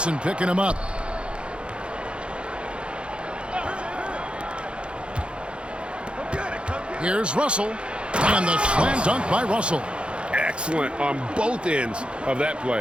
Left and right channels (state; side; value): late; left; 0.057 ms